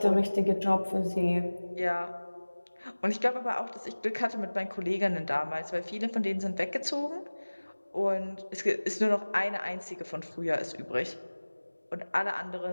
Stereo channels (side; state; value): both; inverted; correlation -1.00